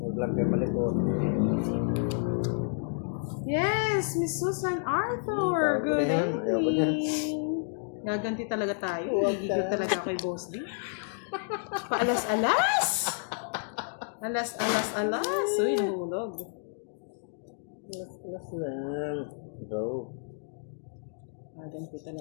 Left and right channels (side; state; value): right; silent; digital silence